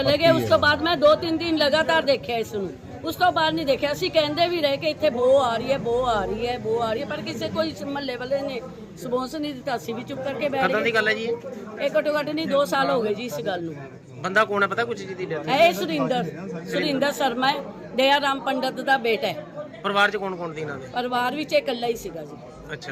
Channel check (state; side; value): identical; both; correlation 1.00